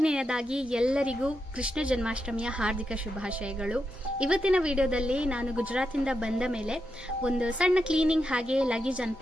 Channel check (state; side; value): normal; both; correlation 0.85